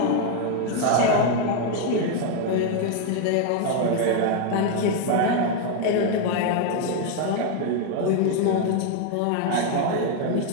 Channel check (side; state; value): both; different; correlation 0.01